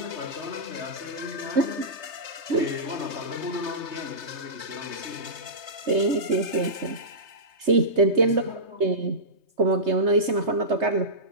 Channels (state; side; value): late; left; 3.3 ms